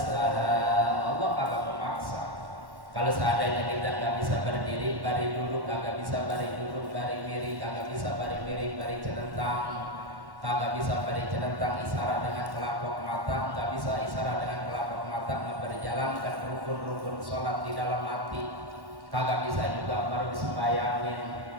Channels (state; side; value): late; left; 1.1 ms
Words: Allah kagak memaksa. Kalau seandainya kita nggak bisa berdiri, bari dulu kagak bisa bari dulu, bari miring kagak bisa bari miring, bari celentang kagak bisa bari celentang, isyarat dengan kelapok mata nggak bisa isyarat dengan kelapok mata, nggak berjalankan rukun-rukun sholat di dalam hati, kagak bisa juga baru disembayangin.